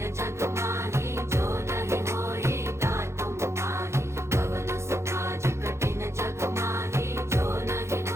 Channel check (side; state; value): left; late; 0.13 ms